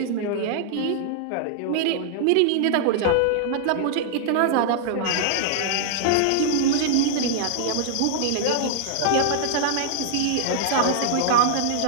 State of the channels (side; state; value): both; different; correlation -0.01